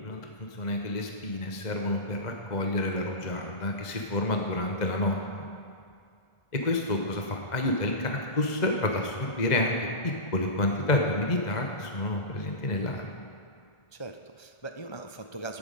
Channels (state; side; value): late; right; 1.5 ms